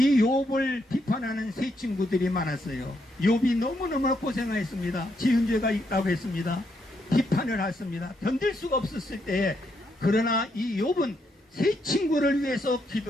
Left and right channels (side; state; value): both; normal; correlation 0.78